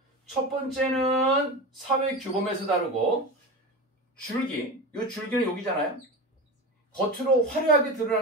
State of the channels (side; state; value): both; normal; correlation 0.25